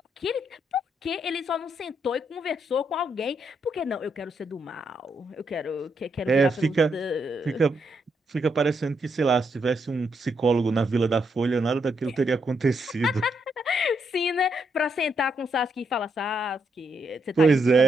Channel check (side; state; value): both; normal; correlation 0.78